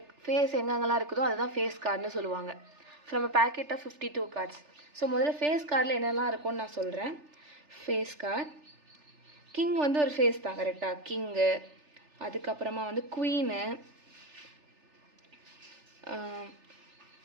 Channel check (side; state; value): left; late; 3.4 ms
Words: எங்கெங்கெல்லாம் இருக்குதோ அதுதான் face கார்டுன்னு சொல்லுவாங்க. From a packet of 52 cards. So முதல்ல ஃபேஸ் கார்டில் என்னெல்லாம் இருக்கும்னு நான் சொல்கிறேன். ஃபேஸ் கார்டு கிங் வந்து ஒரு ஃபேஸ் தான், கரெக்டாக கிங்கு. அதுக்கப்புறமா வந்து குவீனு,